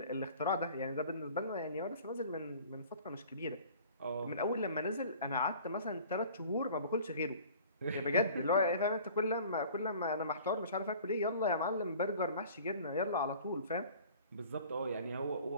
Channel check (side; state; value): both; inverted; correlation -0.47